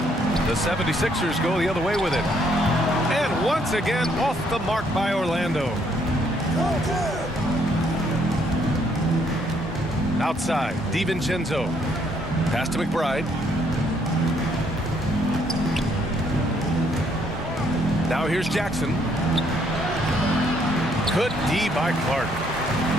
The 76ers go the other way with it. And once again, off the mark by Orlando. Outside, DiVincenzo. Pass to McBride. Now here's Jackson. Good D by Clark.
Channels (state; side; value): normal; both; correlation 0.69